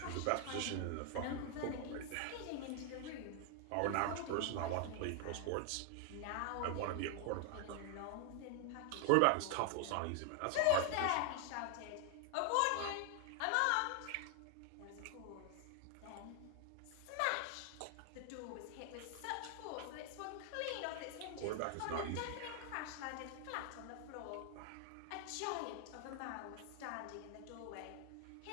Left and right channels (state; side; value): different; both; correlation 0.00